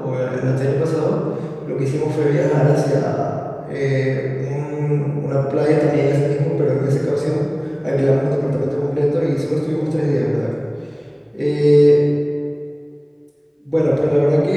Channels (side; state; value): both; identical; correlation 1.00